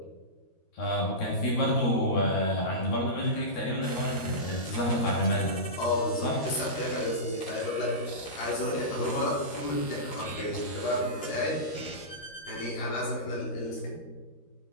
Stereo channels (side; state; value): right; late; 13 ms